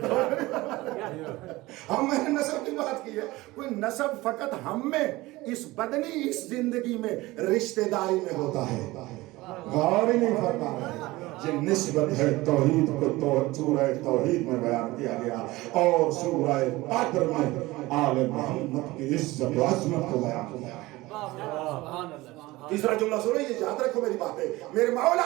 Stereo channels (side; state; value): left; quieter; 19.7 dB